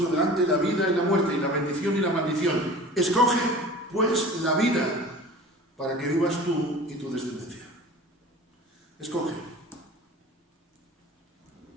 delante la vida y la muerte, y la bendición y la maldición. Escoge, pues, la vida, para que vivas tú y tu descendencia. Escoge.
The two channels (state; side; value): normal; both; correlation 0.40